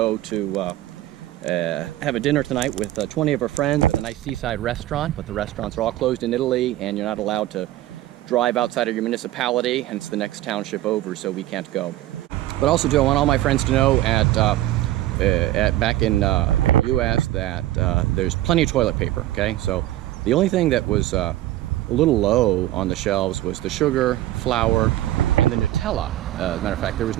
to have a dinner tonight with 20 of her friends at a nice seaside restaurant, but the restaurants are all closed in Italy, and you're not allowed to drive outside of your municipality, and it's the next township over, so we can't go. But also, Joe, I want all my friends to know back in U.S. that there's plenty of toilet paper, okay? So the only thing that was a little low on the shelves was the sugar, flour, and the Nutella. As a matter of fact, there was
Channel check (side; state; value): left; quieter; 14.9 dB